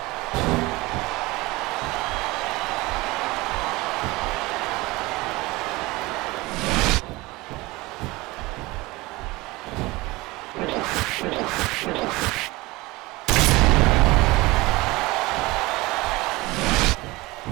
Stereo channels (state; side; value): quieter; left; 21.6 dB